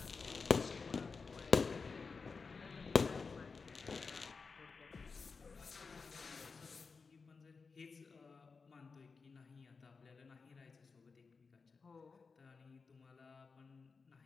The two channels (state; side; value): quieter; right; 4.8 dB